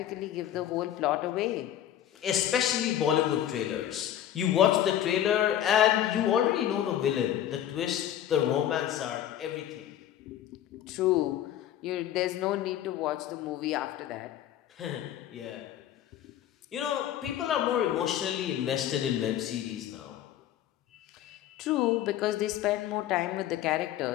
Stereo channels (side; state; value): right; quieter; 11.4 dB